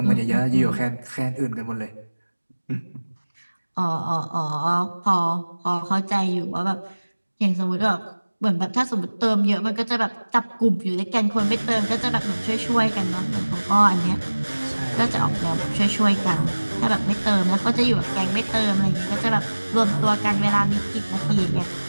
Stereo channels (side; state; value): both; inverted; correlation -1.00